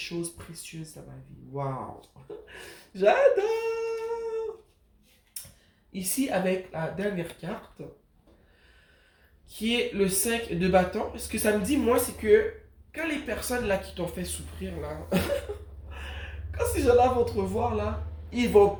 précieuses dans ma vie. Waouh! J'adore! Ici, avec la dernière carte, qui est le 5 de bâton, ce que ça me dit, moi, c'est que quand les personnes là qui t'ont fait souffrir, là, quand ces gens-là vont te revoir, là, ils vont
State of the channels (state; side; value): identical; both; correlation 1.00